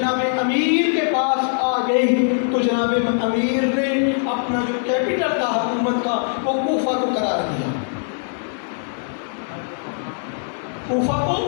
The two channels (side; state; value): right; silent; digital silence